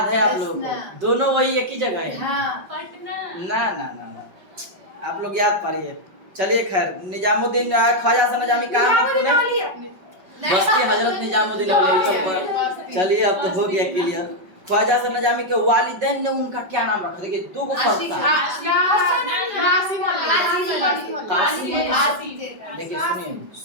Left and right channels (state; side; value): late; left; 5.4 ms